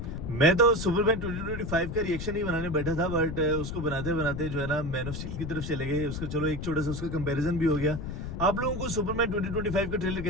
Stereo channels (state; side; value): noise; left; rumble, 6 dB below the sound